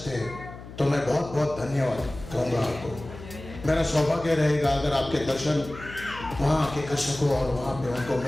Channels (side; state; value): left; noise; hum, 14 dB below the sound